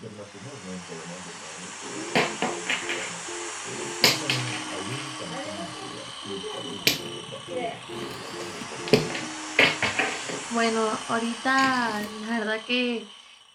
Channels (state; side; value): identical; both; correlation 1.00